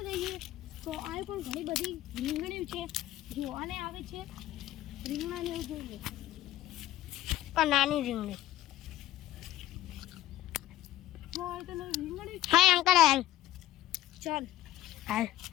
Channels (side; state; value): right; quieter; 14.2 dB